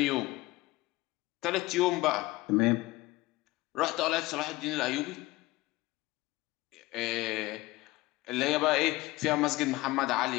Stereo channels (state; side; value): quieter; right; 19.8 dB